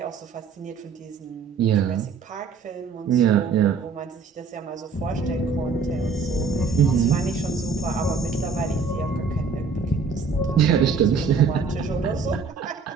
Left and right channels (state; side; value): quieter; left; 5.0 dB